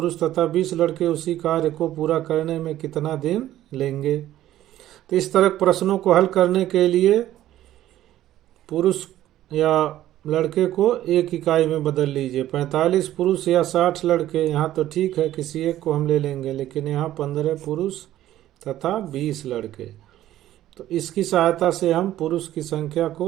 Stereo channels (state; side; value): quieter; left; 13.4 dB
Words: तथा 20 लड़के उसी कार्य को पूरा करने में कितना दिन लेंगे। तो इस तरह प्रश्नों को हल करने के लिए पुरुष या लड़के को एक इकाई में बदल लीजिए। 45 पुरुष या 60 लड़के, यहाँ तो ठीक है किसी एक को हम ले लेंगे, लेकिन यहाँ 15 पुरुष तथा 20 लड़के। तो इसकी सहायता से हम पुरुष की संख्या